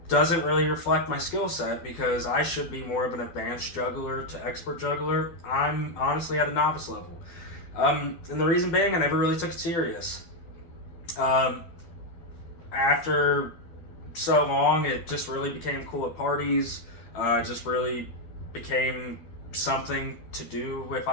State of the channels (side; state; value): right; late; 12 ms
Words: Doesn't really reflect my skill set because I should be more of an advanced juggler to expert juggler. I'm honestly at a novice level. And the reason being, I never really took it serious. After so long, it just really became cool at parties. Just really became something to do if